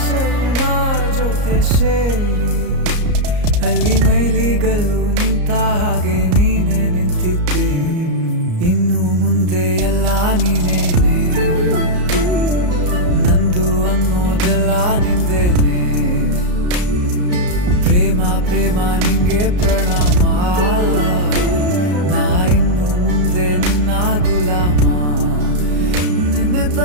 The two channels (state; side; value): late; left; 34 ms